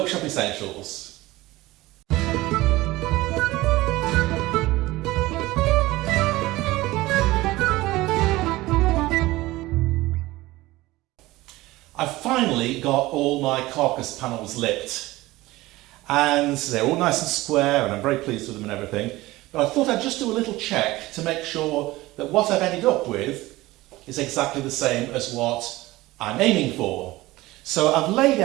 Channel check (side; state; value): left; quieter; 18.8 dB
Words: Essentials. I've finally got all my carcass panels lipped and they're all nice and square and I'm very pleased with them and everything, but I thought I'd just do a little check to make sure that what I've ended up with is exactly the same as what I'm aiming for. So I've laid